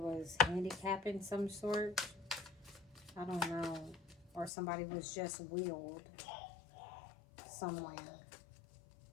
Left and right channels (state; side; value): drops out; right; at 4.5 s